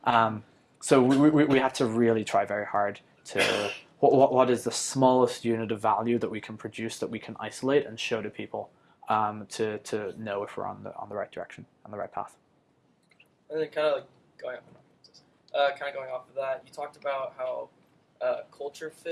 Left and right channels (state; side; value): identical; both; correlation 1.00